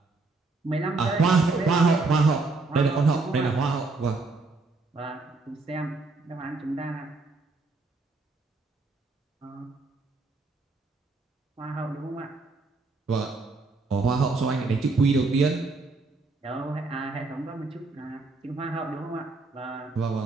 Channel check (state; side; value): quieter; left; 3.6 dB